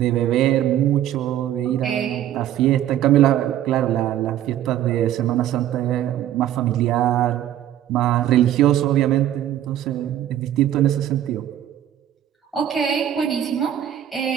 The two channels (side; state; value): left; quieter; 11.6 dB